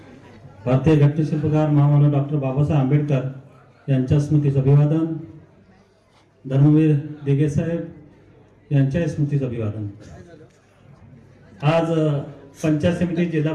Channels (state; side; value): identical; both; correlation 1.00